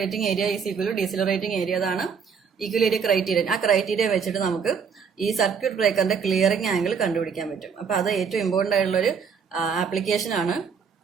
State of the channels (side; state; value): left; quieter; 6.3 dB